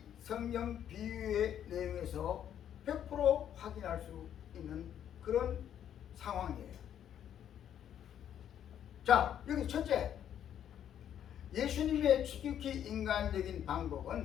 성경 비유의 내용에서 100% 확인할 수 있는 그런 상황이에요. 자, 여기 첫째, 예수님의 지극히 인간적인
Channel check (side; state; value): right; quieter; 9.9 dB